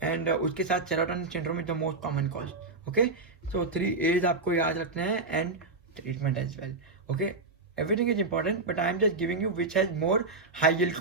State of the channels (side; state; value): left; quieter; 3.5 dB